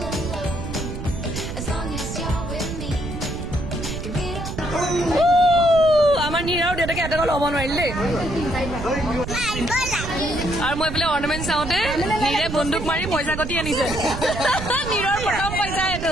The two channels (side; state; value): right; noise; rumble, 7 dB below the sound